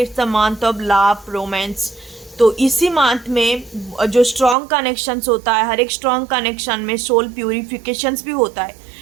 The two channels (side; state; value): left; drops out; at 4.5 s